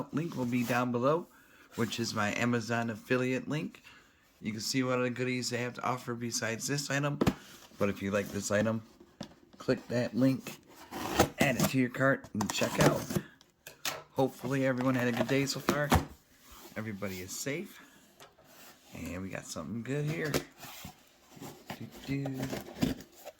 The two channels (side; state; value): both; identical; correlation 1.00